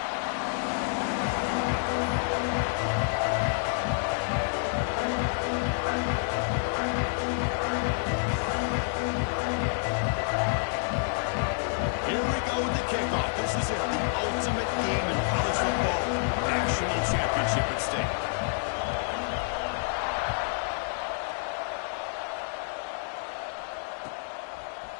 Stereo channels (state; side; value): silent; right; digital silence